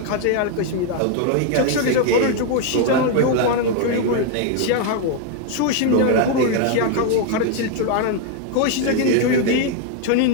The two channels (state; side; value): different; both; correlation 0.01